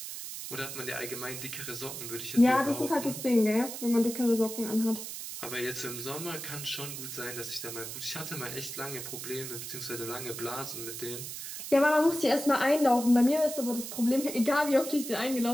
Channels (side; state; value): right; noise; hiss, 8 dB below the sound